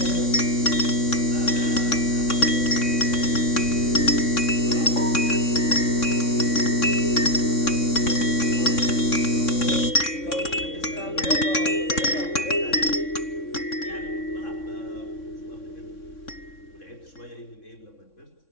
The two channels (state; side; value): late; right; 3.6 ms